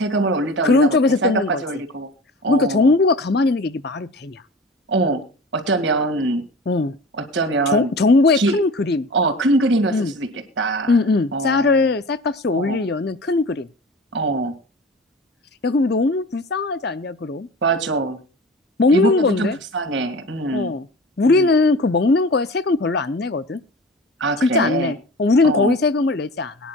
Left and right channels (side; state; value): both; normal; correlation 0.37